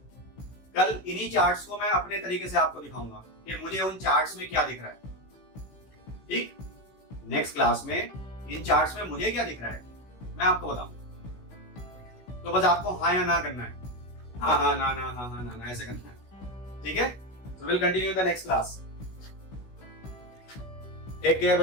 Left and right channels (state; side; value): late; right; 15 ms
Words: कल इन्हीं चार्ट्स को मैं अपने तरीके से आपको दिखाऊंगा कि मुझे उन चार्ट्स में क्या दिख रहा है। ठीक, नेक्स्ट क्लास में इन चार्ट्स में मुझे क्या दिख रहा है मैं आपको बताऊंगा। तो बस आपको हाँ या ना करना है, हाँ ना ऐसे करना है, ठीक है? So we'll continue the next class. Take care